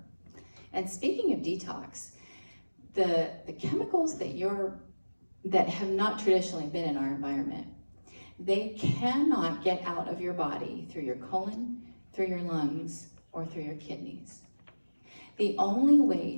And speaking of detox, the chemicals that have not traditionally been in our environment they cannot get out of your body through your colon, through your lungs, or through your kidneys. The only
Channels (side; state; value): both; inverted; correlation -1.00